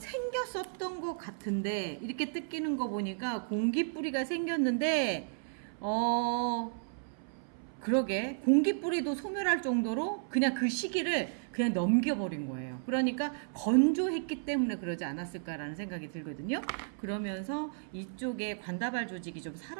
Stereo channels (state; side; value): silent; left; 56 dB below the other